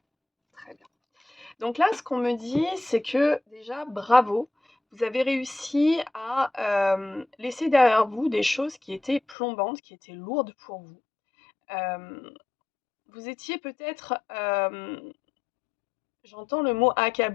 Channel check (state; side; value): drops out; right; at 9.3 s